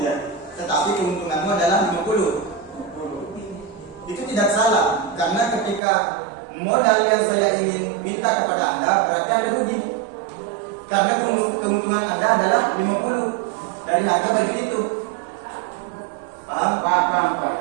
ya, tetapi keuntunganmu adalah 50. Itu tidak salah, karena ketika modal yang saya ingin minta kepada anda berarti anda rugi, karena keuntungan anda adalah 50 dari harga baju itu. Paham?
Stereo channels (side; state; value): left; drops out; at 5.8 s